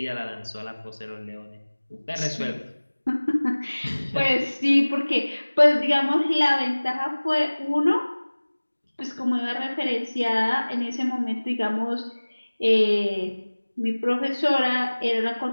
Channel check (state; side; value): inverted; both; correlation -1.00